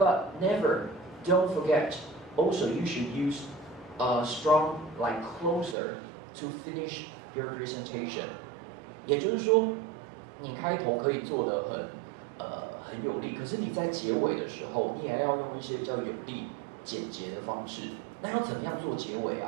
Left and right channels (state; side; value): drops out; left; at 5.8 s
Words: never, don't forget, also you should use a strong like closer to finish your presentation. 也就是说，你开头可以做得很有力，可是你在结尾的时候，你也要用一些比较有力、简洁的方式。那要怎么样做结尾